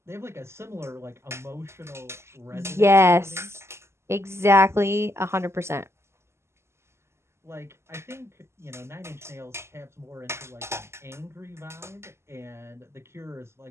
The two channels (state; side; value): late; left; 0.13 ms